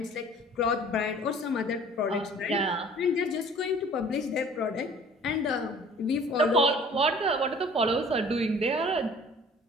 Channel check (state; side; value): normal; both; correlation 0.50